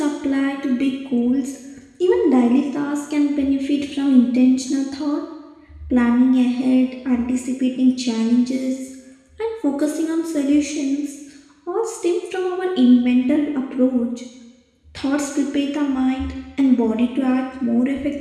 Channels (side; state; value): both; identical; correlation 1.00